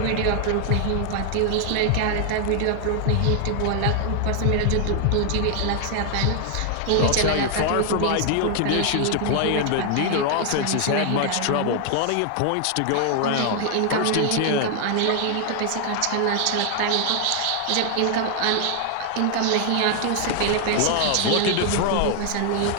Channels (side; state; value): both; different; correlation 0.00